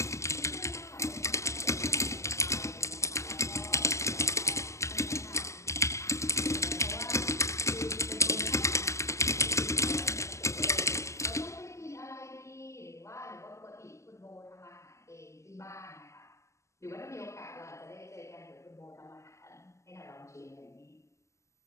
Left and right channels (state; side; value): late; right; 0.14 ms